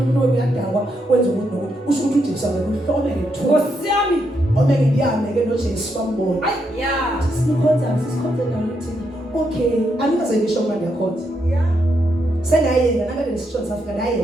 uyadakwa wenza ukuthi nokuthi usho ukuthi uJesu akakuhlome ngethuba Nkosi yami omeke ndiyame ke noJesu bambona yeah sisikhonza naluthi okay angikaze ngisho manje ndiyakhonza yeah senayena nakade nesishoni safika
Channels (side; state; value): both; normal; correlation 0.79